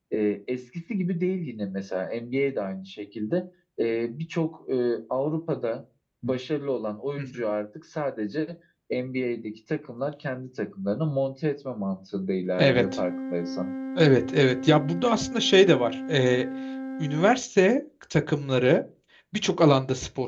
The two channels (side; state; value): both; identical; correlation 1.00